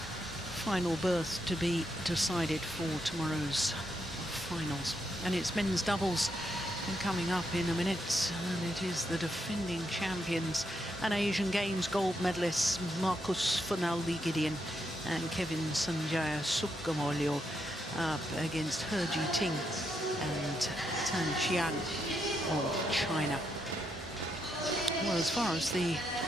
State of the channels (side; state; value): both; normal; correlation 0.80